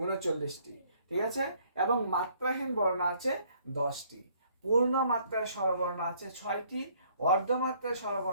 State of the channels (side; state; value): both; inverted; correlation -0.63